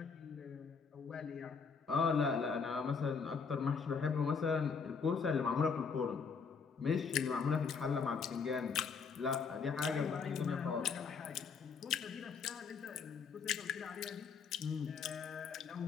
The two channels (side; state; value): right; quieter; 5.7 dB